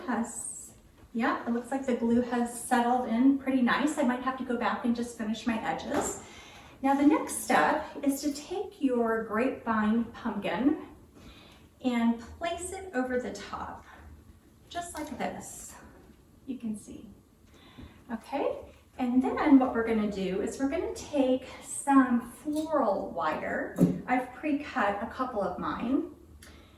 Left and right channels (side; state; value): both; identical; correlation 1.00